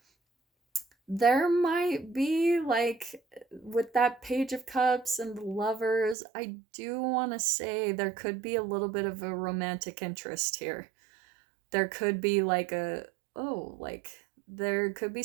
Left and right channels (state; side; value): drops out; left; at 6.2 s